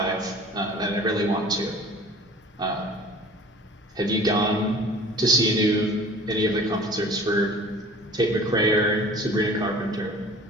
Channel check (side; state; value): both; normal; correlation 0.46